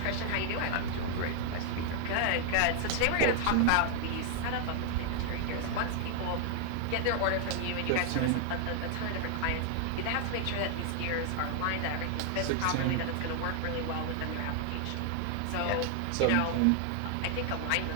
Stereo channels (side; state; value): both; different; correlation 0.00